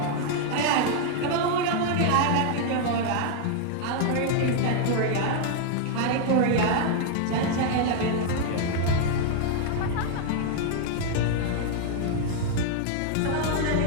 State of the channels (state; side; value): different; both; correlation 0.00